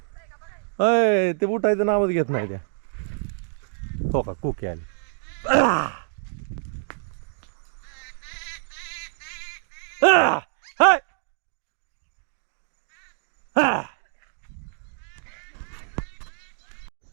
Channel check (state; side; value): silent; left; digital silence